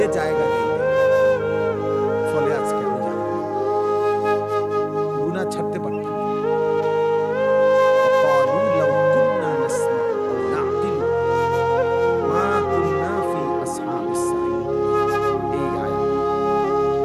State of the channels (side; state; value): both; identical; correlation 1.00